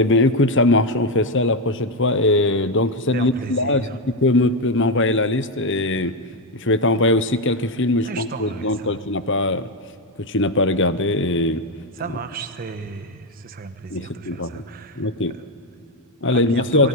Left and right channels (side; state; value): both; normal; correlation 0.07